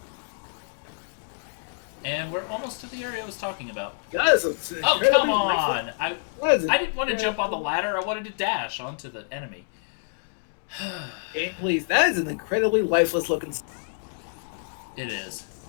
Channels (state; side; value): silent; right; digital silence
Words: And we're almost to the area I was talking about. Oh, come on! I didn't want to jump on the ladder. I wanted to dash onto the enemy. Please, that is an incredibly lifeless looking. It is.